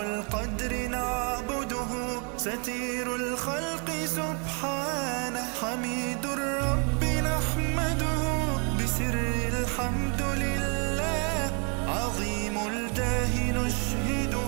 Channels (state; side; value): quieter; left; 37.9 dB